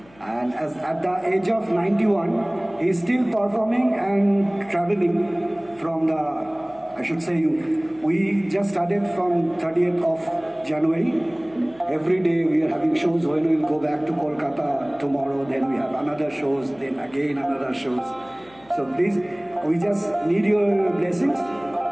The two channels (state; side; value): noise; left; hum, 27 dB below the sound